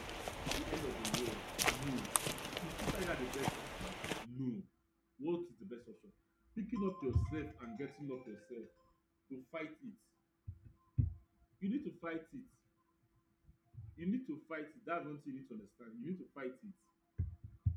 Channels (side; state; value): both; identical; correlation 1.00